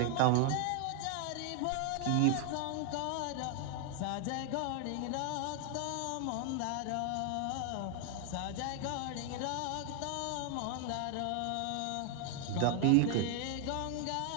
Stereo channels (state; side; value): different; both; correlation 0.00